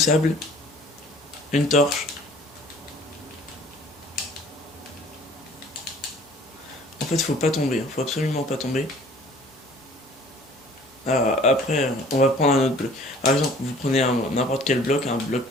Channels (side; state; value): both; normal; correlation 0.52